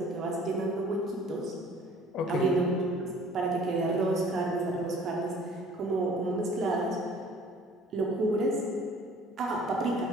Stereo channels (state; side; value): normal; both; correlation 0.52